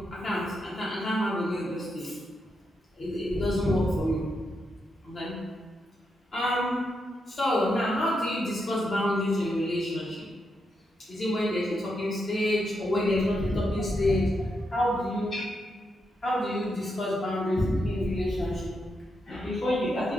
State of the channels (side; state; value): both; normal; correlation 0.83